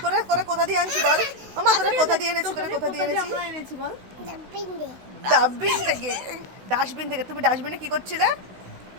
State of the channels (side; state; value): left; late; 16 ms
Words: তোরে তোরে কোথা দিয়ে আনছি বল? মামা তোরে কোথা দিয়ে এনেছি, তোরে কোথা দিয়ে এনেছি? আমরা এনেছি বল। ডাব্বিং দে। ডাস্টবিন থেকে। ডাস্টবিন থেকে। তুমি ডাস্টবিনে কি করছিলে?